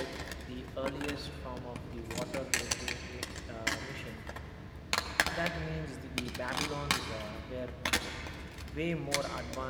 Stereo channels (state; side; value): identical; both; correlation 1.00